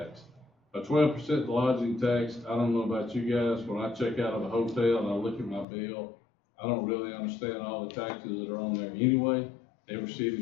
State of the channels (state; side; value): drops out; right; at 5.7 s